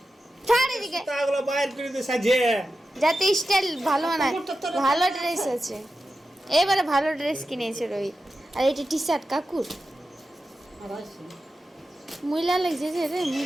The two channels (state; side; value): normal; both; correlation 0.91